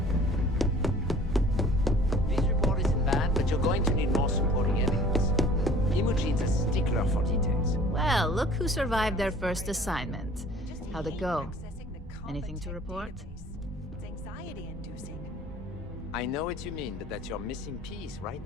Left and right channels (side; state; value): both; normal; correlation 0.49